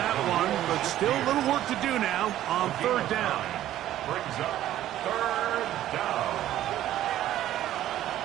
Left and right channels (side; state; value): left; quieter; 13.0 dB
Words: that one, but still a little work to do now on 3rd down. Brings up 3rd down.